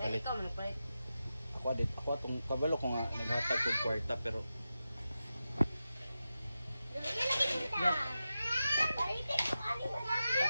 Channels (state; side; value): inverted; both; correlation -0.92